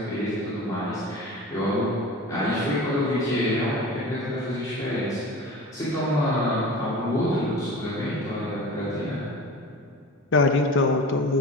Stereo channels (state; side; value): normal; both; correlation 0.35